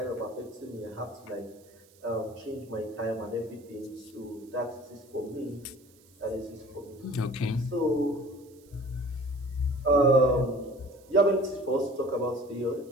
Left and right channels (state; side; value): noise; right; hiss, 28 dB below the sound